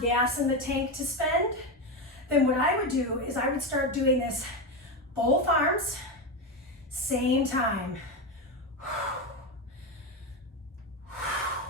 in the tank to spend, then what I would do is I would start doing this both arms, same time.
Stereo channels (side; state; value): both; normal; correlation 0.14